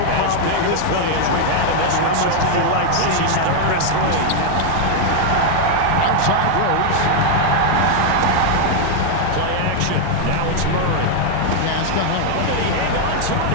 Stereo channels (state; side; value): different; both; correlation 0.00